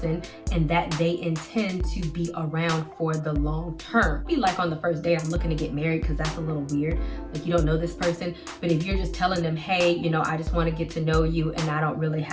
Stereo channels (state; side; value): identical; both; correlation 1.00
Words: and that they intend to be around for the long term. Be like on the first date, I'm looking to get married, because that's a little weird. Like, you don't know this person, but if you're just telling them, hey, you know, I just want to get to know you and I don't really